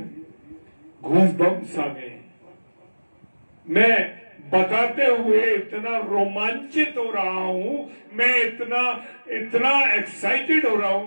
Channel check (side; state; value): both; inverted; correlation -1.00